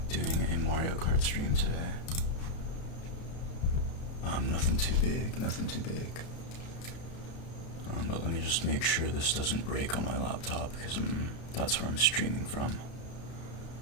doing a Mario Kart stream today. Nothing too big, nothing too big. But let me just make sure this doesn't break on my laptop, because that's where I'm streaming from.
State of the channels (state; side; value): late; right; 32 ms